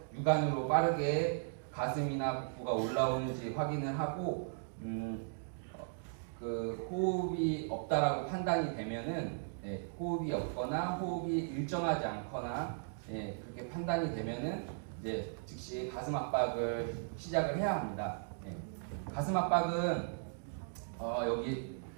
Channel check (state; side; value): silent; left; digital silence